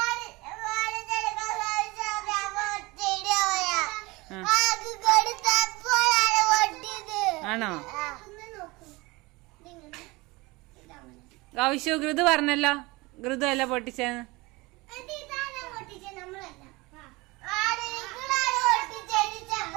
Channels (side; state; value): left; quieter; 23.3 dB